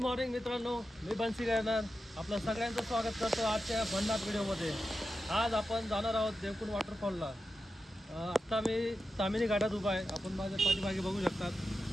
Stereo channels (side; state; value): both; normal; correlation 0.90